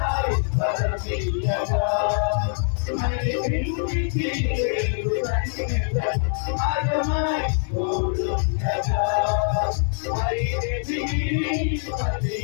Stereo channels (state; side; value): silent; right; digital silence